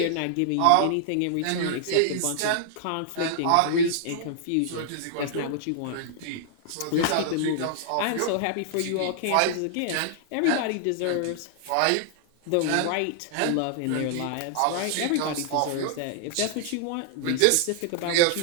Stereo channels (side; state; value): both; different; correlation -0.01